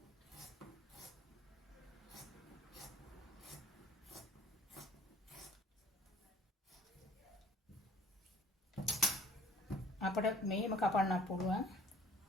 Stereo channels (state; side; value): normal; both; correlation 0.53